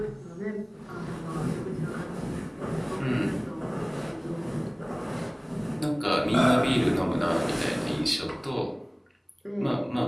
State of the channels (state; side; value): identical; both; correlation 1.00